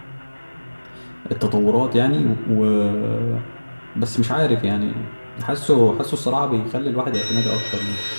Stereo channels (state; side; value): inverted; both; correlation -1.00